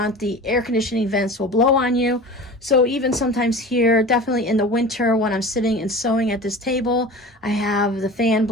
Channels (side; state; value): both; normal; correlation 0.36